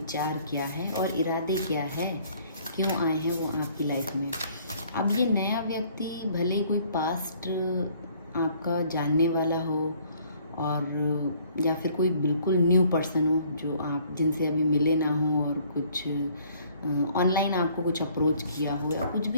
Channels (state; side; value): inverted; both; correlation -0.60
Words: क्या है और इरादे क्या है, क्यों आए हैं वो आपकी लाइफ में। अब ये नया व्यक्ति भले कोई पास्ट आपका जानने वाला हो और या फिर कोई बिल्कुल न्यू पर्सन हो जो आप जिनसे अभी मिले ना हो और कुछ ऑनलाइन आपको कुछ अप्रोच किया हो या कुछ